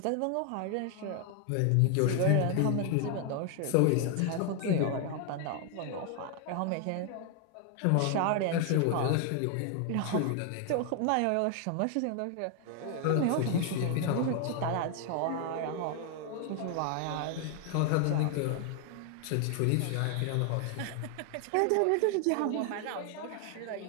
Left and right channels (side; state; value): both; different; correlation 0.00